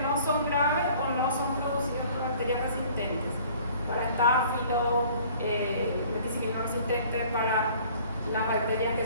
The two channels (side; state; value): both; inverted; correlation -0.52